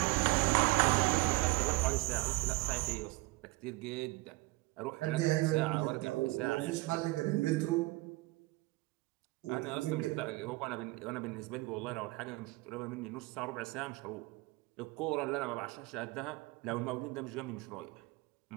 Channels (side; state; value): left; quieter; 22.7 dB